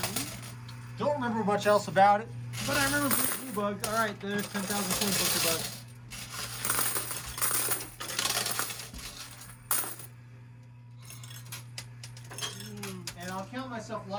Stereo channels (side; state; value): both; identical; correlation 1.00